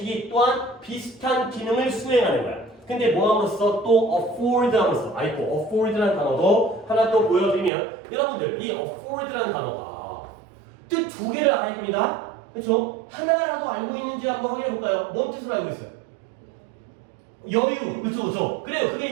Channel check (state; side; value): drops out; left; at 7.7 s